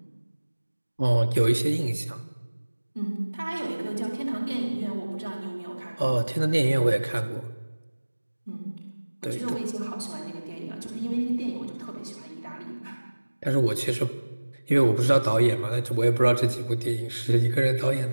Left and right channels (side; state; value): both; inverted; correlation -1.00